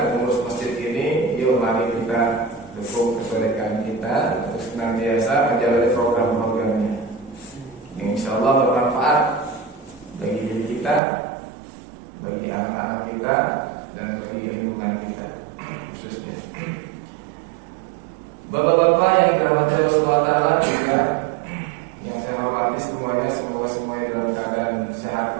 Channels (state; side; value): drops out; left; at 11.0 s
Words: mengurus masjid ini, yuk mari kita dukung kebenekaan kita untuk senantiasa menjalani program-programnya yang insya Allah bermanfaat bagi diri kita, bagi anak-anak kita, dan bagi lingkungan kita khususnya. Bapak-bapak yang dirahmati Allah SWT juga yang saya hormati semuanya, semoga semuanya dalam keadaan sehat